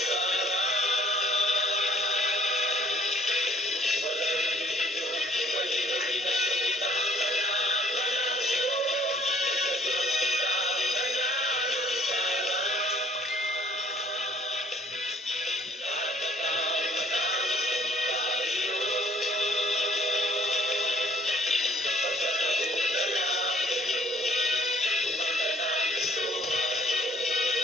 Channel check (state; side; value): normal; both; correlation 0.57